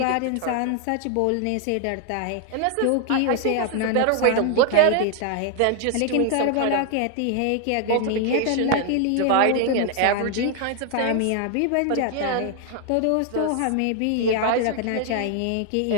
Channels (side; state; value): both; different; correlation 0.00